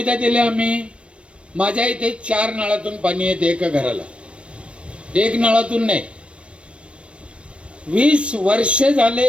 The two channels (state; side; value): late; left; 0.060 ms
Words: दिल्या आम्ही? माझ्या इथे 4 नळातून पाणी येते एका घराला, 1 नळातून नाही. 20 वर्ष झाले